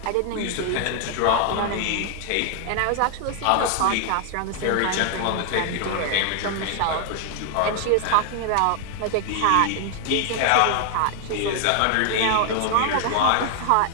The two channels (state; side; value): different; both; correlation 0.00